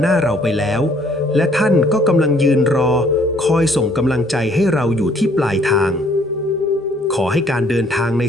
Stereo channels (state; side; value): normal; both; correlation 0.62